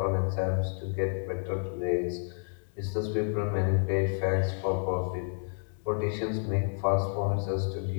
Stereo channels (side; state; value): right; silent; digital silence